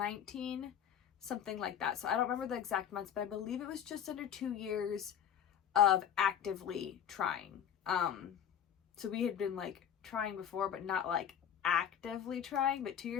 something like that. So I don't remember the exact months, but I believe it was just under 2 years of actively trying. So we had been like trying before, but not like actively trying, but 2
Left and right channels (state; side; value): quieter; right; 9.1 dB